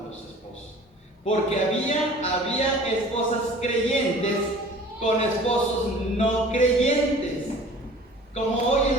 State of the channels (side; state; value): both; normal; correlation 0.46